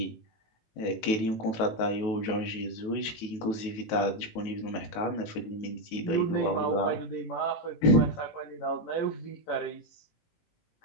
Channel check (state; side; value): late; right; 18 ms